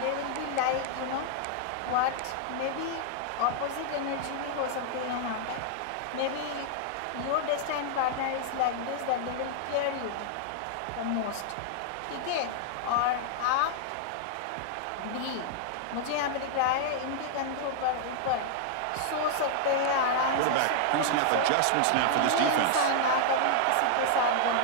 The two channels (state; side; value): different; both; correlation -0.01